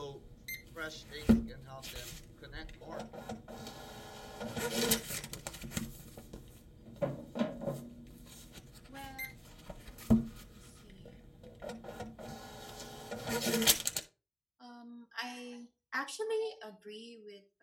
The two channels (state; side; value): identical; both; correlation 1.00